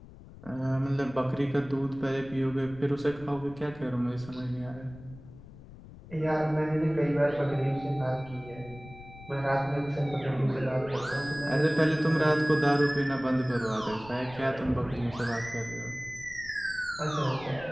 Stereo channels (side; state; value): left; noise; rumble, 18 dB below the sound